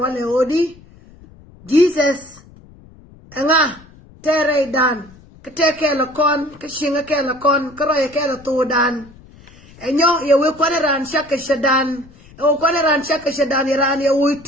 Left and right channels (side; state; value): left; noise; rumble, 24 dB below the sound